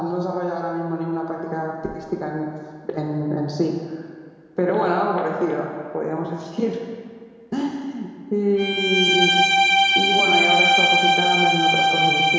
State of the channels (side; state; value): both; identical; correlation 1.00